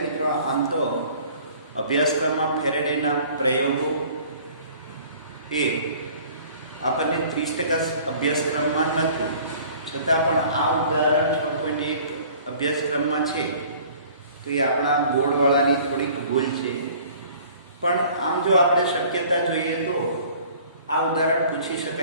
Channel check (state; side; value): inverted; both; correlation -0.50